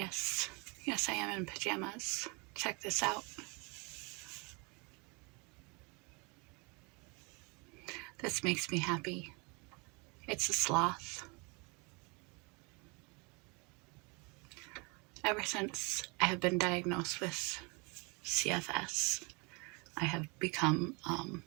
Yes, I am in pajamas. Check this out. This makes me happy. It's a sloth. Ever since I have been diagnosed with CFS, I have become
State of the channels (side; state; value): left; quieter; 30.1 dB